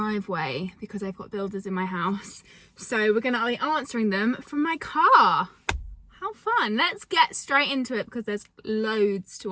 because I've got builders in my house. So we're going to be answering them from my car. How fun. Let's get straight into it because there's loads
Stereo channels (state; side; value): identical; both; correlation 1.00